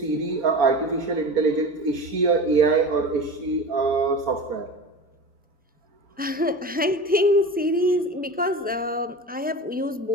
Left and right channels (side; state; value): both; normal; correlation 0.32